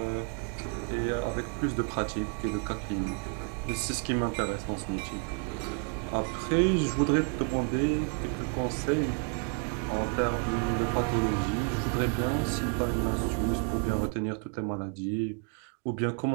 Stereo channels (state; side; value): quieter; left; 39.8 dB